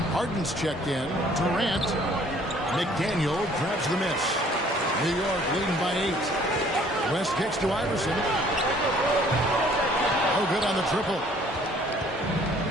Harden's checked in. Durant. McDaniel grabs the miss. New York leading by 8. West kicks to Iverson. Oh, good on the triple.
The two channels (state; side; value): normal; both; correlation 0.57